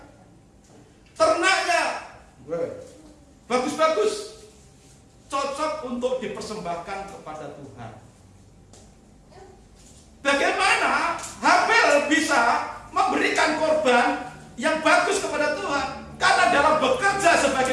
ternaknya bagus-bagus, cocok untuk dipersembahkan kepada Tuhan. Bagaimana Habel bisa memberikan korban yang bagus kepada Tuhan? Karena dalam bekerja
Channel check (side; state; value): both; identical; correlation 1.00